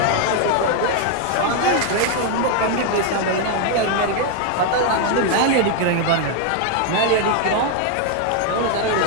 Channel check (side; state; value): both; different; correlation 0.00